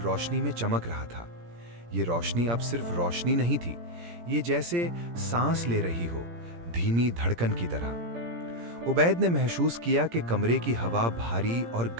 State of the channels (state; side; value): late; left; 17 ms